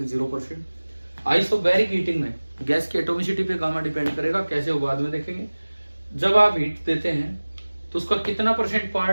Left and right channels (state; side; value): inverted; both; correlation -1.00